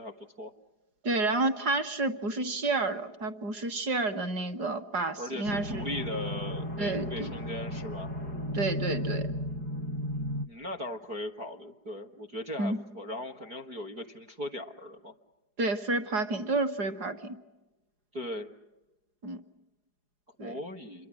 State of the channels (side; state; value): left; late; 4.8 ms